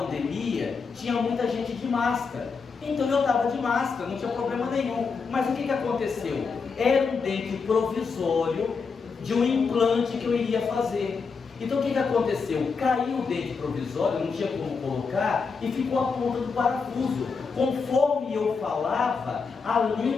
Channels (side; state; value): right; quieter; 5.1 dB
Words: tinha muita gente de máscara. Então eu estava de máscara, não tinha problema nenhum. Mas o que aconteceu? Era um dente provisório de um implante que eu iria fazer. Então o que aconteceu? Caiu o dente provisório, não tinha como colocar, e ficou a ponta do parafuso. Conforme eu falava, a